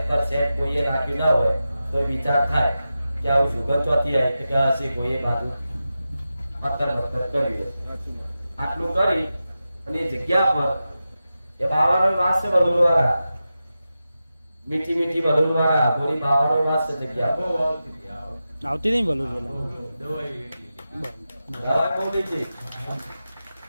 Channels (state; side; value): inverted; both; correlation -0.92